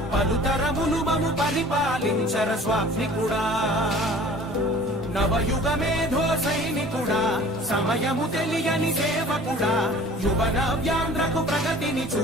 पलुतरमुलु ममु परिपालिंचर स्वामिकुड़ा नवयुग मेधो सैनिकुड़ा समयमु तेलियनि सेवकुड़ा युवन व्यांध्रकु प्रगतिनि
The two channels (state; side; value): normal; both; correlation 0.47